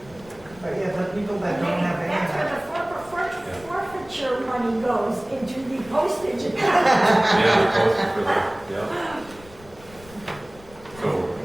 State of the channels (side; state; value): left; noise; rumble, 22 dB below the sound